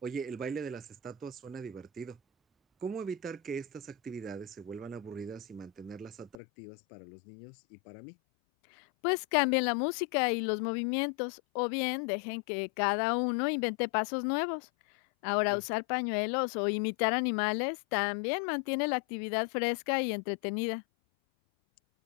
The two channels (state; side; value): drops out; right; at 6.4 s